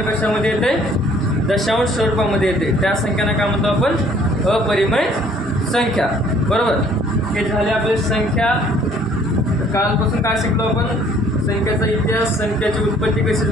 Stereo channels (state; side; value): normal; both; correlation 0.58